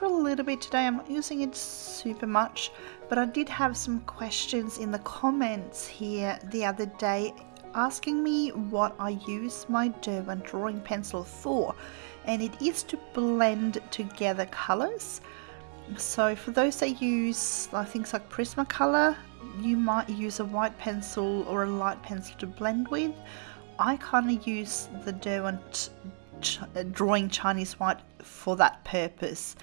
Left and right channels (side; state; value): left; silent; 57 dB below the other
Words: a little bit today. I'm not using it super much, but I did have some questions in the comments here the other day asking me what I use my Derwent drawing pencil for, and it is to blend together colors. So for those that use things like Prismacolor, you might use a white pencil or a light pencil to blend with. I kind of use the Derwent Drawing Chinese White for that purpose.